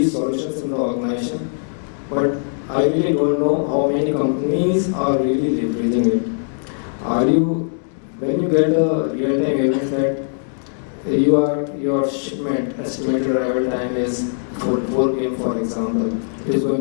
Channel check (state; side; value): silent; right; digital silence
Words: solutions in the organization, but I really don't know how many companies are really leveraging it. When you get a real-time event that your shipment estimated arrival time is 4 p.m. for example, it is